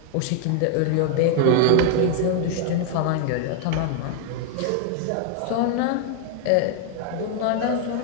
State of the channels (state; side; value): different; both; correlation 0.00